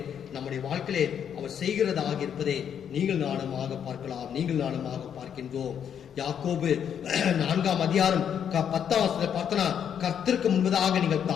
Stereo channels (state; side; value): quieter; right; 8.5 dB